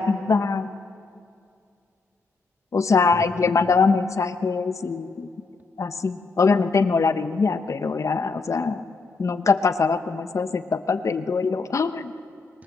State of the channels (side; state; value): right; quieter; 4.2 dB